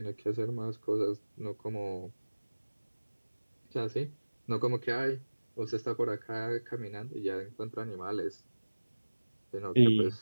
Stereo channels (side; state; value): both; inverted; correlation -1.00